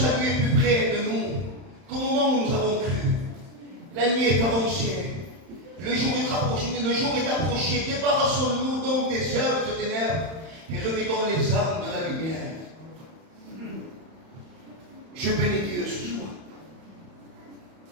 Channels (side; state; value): left; late; 31 ms